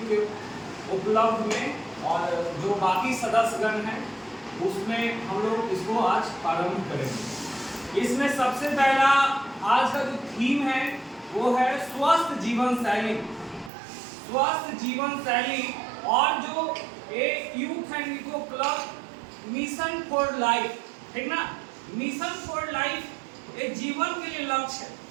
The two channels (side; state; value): left; drops out; at 13.7 s